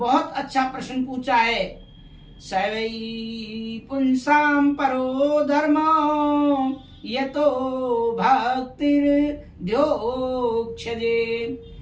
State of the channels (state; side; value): identical; both; correlation 1.00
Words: अच्छा प्रश्न पूछा है। सवै पुंसाम परो धर्म यतो भक्तिर्ध्योक्षजे